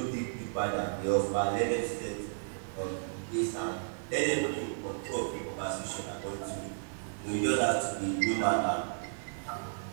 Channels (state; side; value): silent; left; digital silence